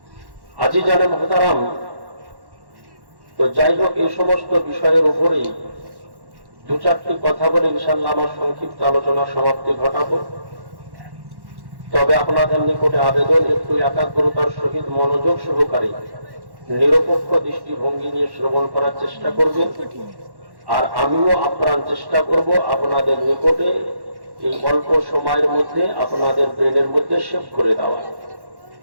আজিজানে মহতারাম, তো যাই হোক, এই সমস্ত বিষয়ের উপরেই দু চারটি কথা বলে ইনশাআল্লাহ আমার সংক্ষিপ্ত আলোচনা সমাপ্তি ঘটাবো। তবে আপনাদের নিকটে আবেদন, একটু একাগ্রতার সহিত মনোযোগ সহকারে নিরপেক্ষ দৃষ্টিভঙ্গি নিয়ে শ্রবণ করার চেষ্টা করবেন। আর আমিও আপ্রাণ চেষ্টা করব আপনাদের নিকটে এই অল্প সময়ের মধ্যে আপনাদের ব্রেনের মধ্যে সেভ করে দেওয়া।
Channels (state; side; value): late; left; 1.1 ms